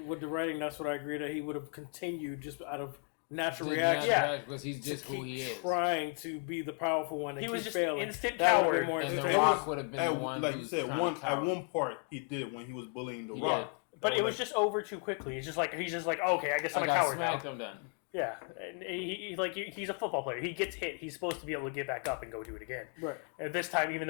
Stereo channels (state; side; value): quieter; right; 37.5 dB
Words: With the writing, that's what I agree that he would have continued just out of natural reaction. Because he's just who he is. Trying to be the powerful one. And he was just failing. instant coward. And The Rock would have been the one. Like you said, at one part he did it when he was bullying The Rock. But it was just over too quickly. It's just he's just like, okay, I guess I'm a coward now. I'm done. Yeah, and he's a football player. He gets hit. He's supposed to be able to get back up and go do it again. Right. And this time, even